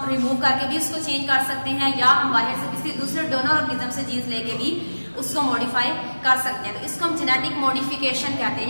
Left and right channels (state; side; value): inverted; both; correlation -1.00